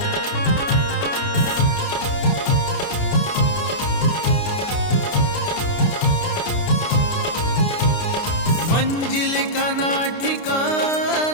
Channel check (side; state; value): right; late; 29 ms